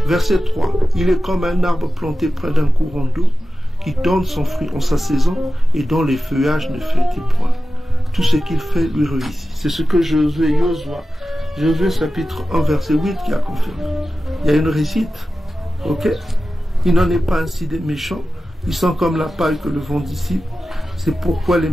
Verset 3. Il est comme un arbre planté près d'un courant d'eau qui donne son fruit en sa saison et dont les feuillages ne flétissent point. Tout ce qu'il fait lui réussit. C'est ce que Josué chapitre 1 verset 8 qui a confirmé. Il y a une réussite. Ok? Il n'en est pas ainsi des méchants. Ils sont comme la paille que le vent dissipe. C'est pourquoi les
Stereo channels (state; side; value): normal; both; correlation 0.94